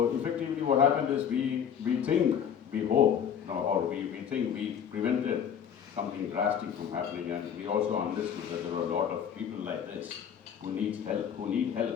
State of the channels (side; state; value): right; quieter; 8.3 dB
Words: effectively what happened is we hope, or we think we prevented something drastic from happening, and we also understood that there are a lot of people like this who need help,